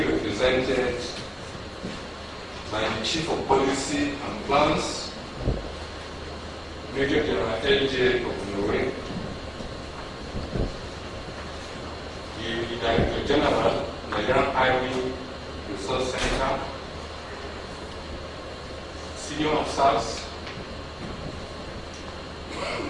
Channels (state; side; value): identical; both; correlation 1.00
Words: by the Chief of Policy and Plans, Major General L.J. Okunore, the Director General, Nigerian Army Resource Center, senior officers,